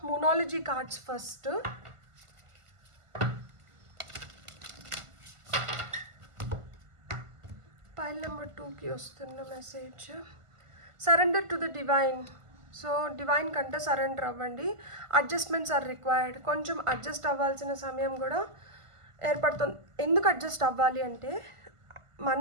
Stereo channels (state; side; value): late; left; 1.5 ms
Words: moonology cards. First pile number 2కి వస్తున్న message, surrender to the divine. So divine కంటే సరెండర్ అవ్వండి. Adjustments are required. కొంచెం అడ్జస్ట్ అవ్వాల్సిన సమయం కూడా ఏర్పడుతుంది. ఎందుకు అడ్జస్ట్ అవ్వాలి అంటే,